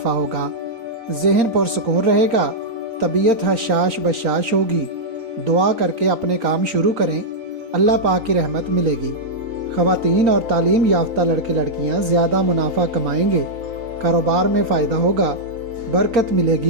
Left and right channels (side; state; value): left; late; 3.9 ms